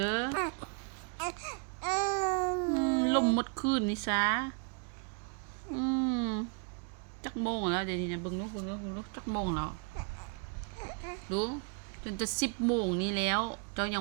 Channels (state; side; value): quieter; left; 38.3 dB